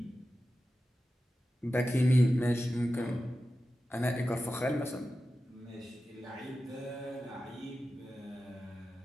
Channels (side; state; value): both; normal; correlation 0.93